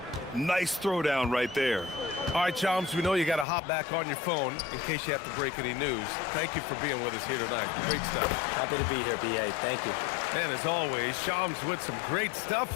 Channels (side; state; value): right; drops out; at 3.5 s